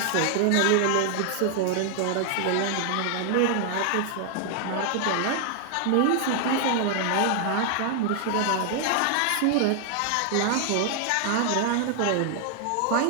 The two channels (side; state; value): both; different; correlation 0.00